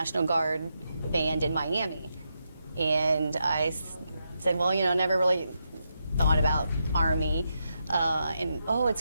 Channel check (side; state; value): both; inverted; correlation -0.84